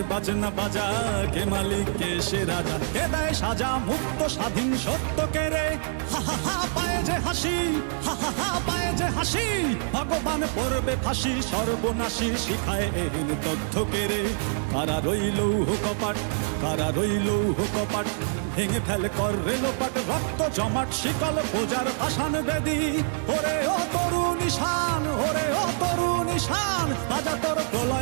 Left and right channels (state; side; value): silent; left; 61 dB below the other